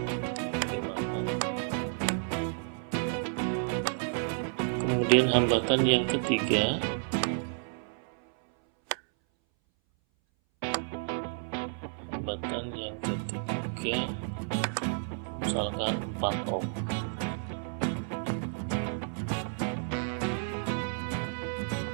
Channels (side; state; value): left; silent; 57 dB below the other